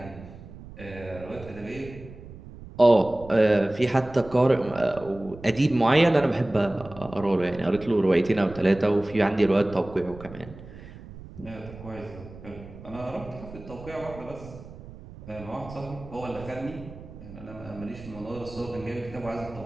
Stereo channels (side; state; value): right; noise; rumble, 16 dB below the sound